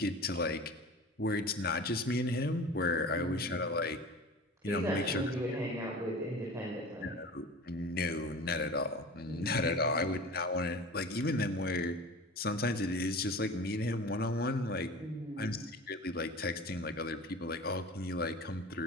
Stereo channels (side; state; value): both; normal; correlation 0.37